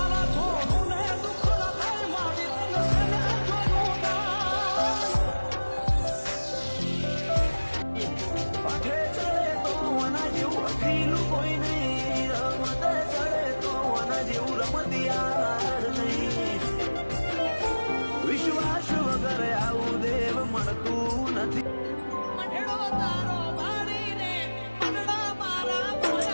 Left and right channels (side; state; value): both; inverted; correlation -1.00